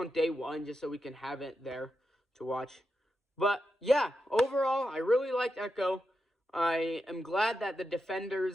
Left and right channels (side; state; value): both; normal; correlation 0.87